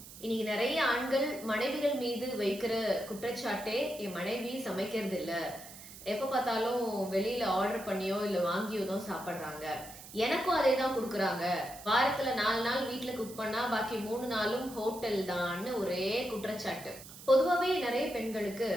இன்னைக்கு நிறைய ஆண்கள் மனைவிகள் மீது வைக்கிற குற்றச்சாட்டே என் மனைவி சமைக்கிறது இல்ல, எப்ப பார்த்தாலும் வெளியில ஆர்டர் பண்ணியோ இல்ல வாங்கியோ தான் சாப்பிடுறாங்க, எனக்கும் அதே தான் கொடுக்குறாங்க, வாரத்துல 4 நாள் வீட்டுல குக் பண்ணா பாக்கி 3 நாளும் ஹோட்டல் தான்னு ஒரே குற்றச்சாட்டு. பொதுவாவே நிறைய பெண்களுக்கு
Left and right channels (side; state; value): right; noise; hiss, 16 dB below the sound